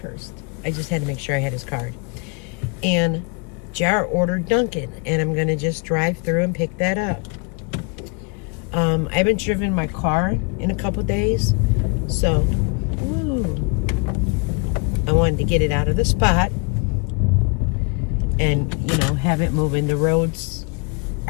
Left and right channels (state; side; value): quieter; right; 32.4 dB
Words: I just had to make sure I had his card. And Jar ordered Dunkin', and I'm gonna just drive through and pick that up. I haven't driven my car in a couple days, so I wanted to get it out of the spot and, have it moving. The roads